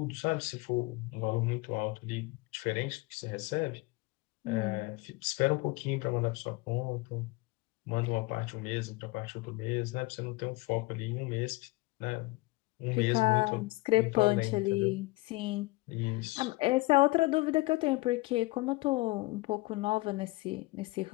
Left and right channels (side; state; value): right; quieter; 22.4 dB